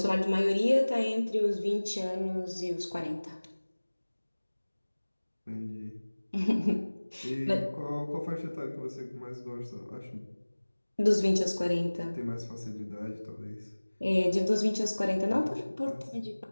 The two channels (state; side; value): inverted; both; correlation -1.00